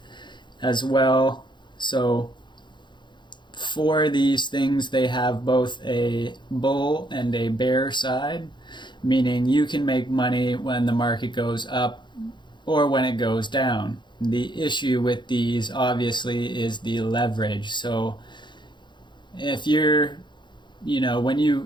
as well. So for these things, they have both a bull and a bear side, meaning you can make money when the market goes up or when it goes down. The issue with these obviously is the leverage. So if you're, when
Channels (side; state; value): right; late; 0.22 ms